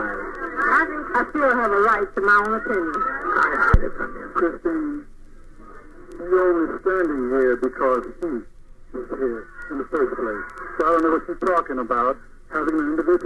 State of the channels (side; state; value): both; identical; correlation 1.00